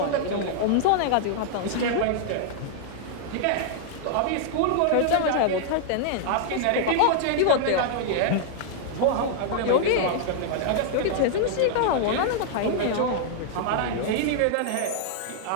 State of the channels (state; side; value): different; both; correlation -0.01